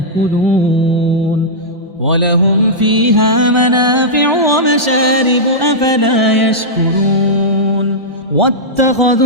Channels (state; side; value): normal; both; correlation -0.11